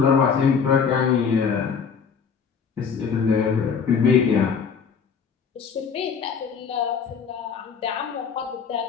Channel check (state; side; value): quieter; right; 6.3 dB